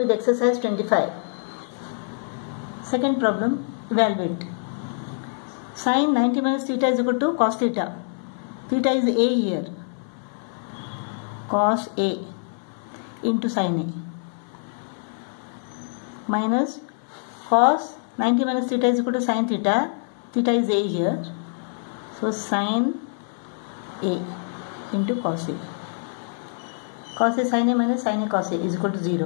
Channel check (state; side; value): silent; right; 56 dB below the other